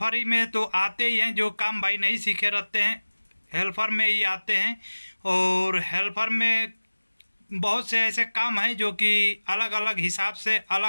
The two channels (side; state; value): both; inverted; correlation -1.00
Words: में तो आते ही हैं, जो काम भाई नहीं सीखे रहते हैं हेल्पर में ही आते हैं। और हेल्पर में बहुत से ऐसे काम हैं जो कि अलग अलग हिसाब से